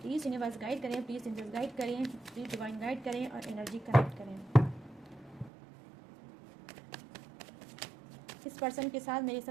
प्लीज़ यूनिवर्स गाइड करें, प्लीज़ एंजल्स गाइड करें, प्लीज़ डिवाइन गाइड करें और एनर्जी कनेक्ट करें। इस पर्सन के साथ मेरे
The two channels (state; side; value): drops out; left; at 5.5 s